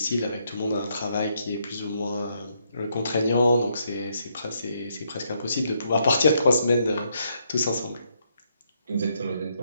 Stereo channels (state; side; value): inverted; both; correlation -0.75